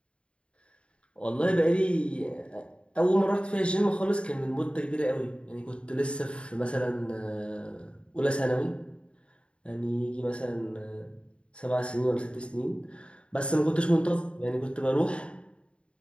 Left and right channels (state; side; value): late; right; 0.057 ms